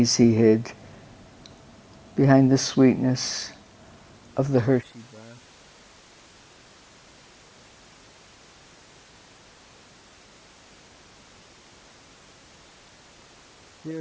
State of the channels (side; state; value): both; identical; correlation 1.00